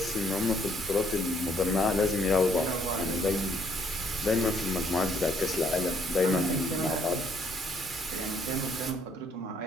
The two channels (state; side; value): normal; both; correlation 0.67